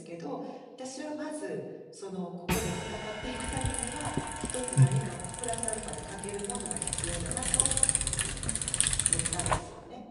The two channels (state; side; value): identical; both; correlation 1.00